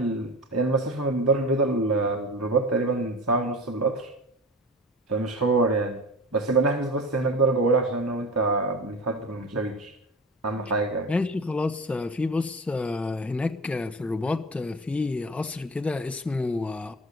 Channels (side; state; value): both; normal; correlation 0.31